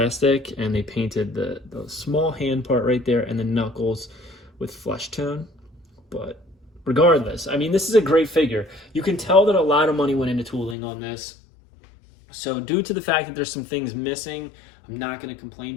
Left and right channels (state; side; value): drops out; right; at 10.8 s